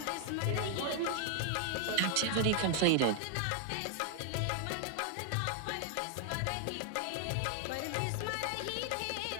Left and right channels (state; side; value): different; both; correlation 0.00